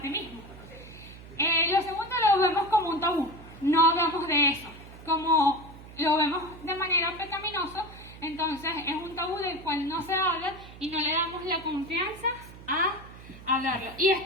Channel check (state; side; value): noise; right; hum, 17 dB below the sound